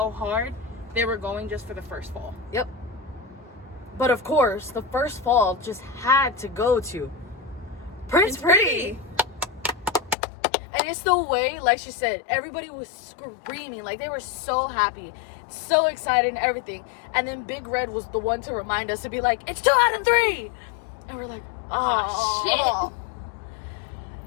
hard they were going just for the first fall. Yep. But of course, the first fall just had to go to Prince Pretty. And it's the way, like she said, everybody was screaming. Like, they were so happy, so excited and everything. And then Big Red was the one to remind us to be like, it's 2 out of 3. And we're like, oh,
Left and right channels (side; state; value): right; drops out; at 10.2 s